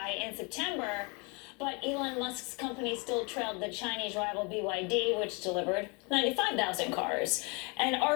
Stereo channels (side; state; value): right; quieter; 31.1 dB